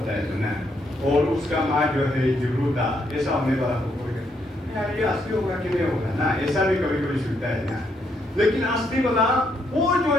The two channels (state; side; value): normal; both; correlation 0.75